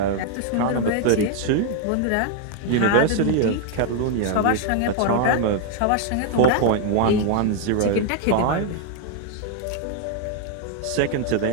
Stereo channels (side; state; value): both; different; correlation 0.00